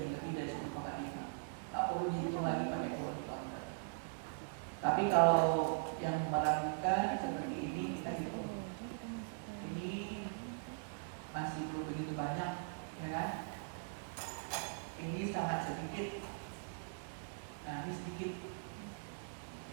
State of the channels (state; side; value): silent; left; digital silence